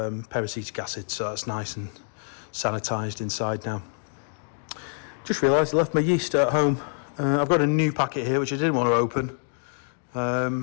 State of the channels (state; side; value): silent; right; 61 dB below the other